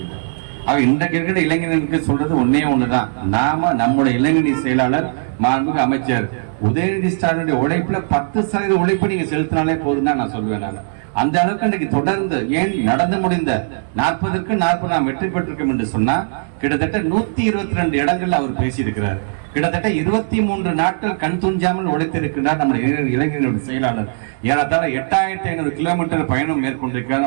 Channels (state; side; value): silent; left; digital silence